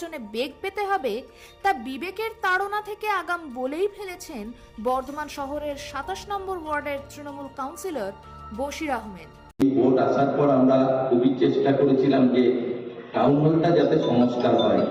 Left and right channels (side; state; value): both; identical; correlation 1.00